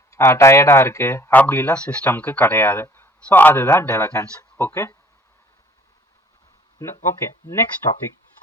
டயர்டாக இருக்குது அப்படிலாம் சிஸ்டம்க்கு கிடையாது. ஸோ அதுதான் டெலிகன்ஸ். Okay, okay, next topic.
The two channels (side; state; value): both; normal; correlation 0.56